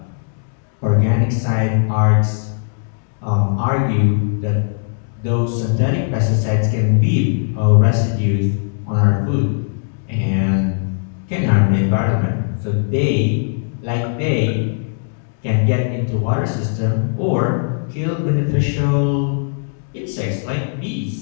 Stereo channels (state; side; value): silent; right; digital silence